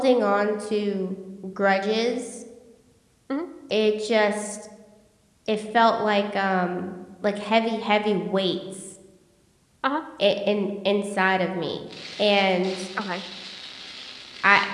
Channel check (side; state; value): both; identical; correlation 1.00